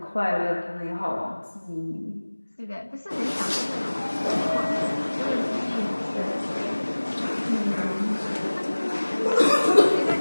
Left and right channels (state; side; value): inverted; both; correlation -1.00